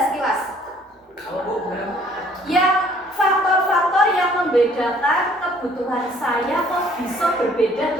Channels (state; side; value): normal; both; correlation 0.59